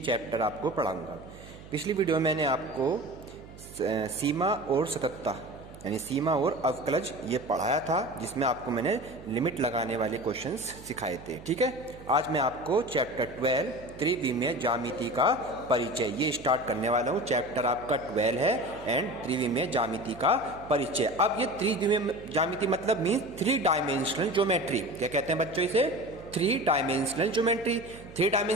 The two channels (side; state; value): right; noise; hum, 18 dB below the sound